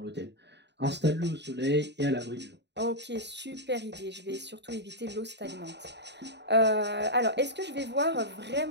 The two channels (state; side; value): late; left; 0.50 ms